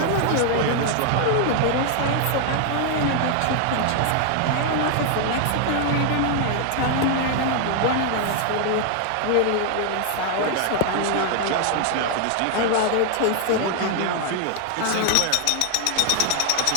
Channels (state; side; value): different; both; correlation 0.00